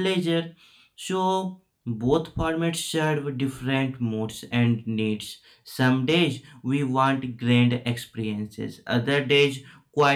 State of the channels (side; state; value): both; identical; correlation 1.00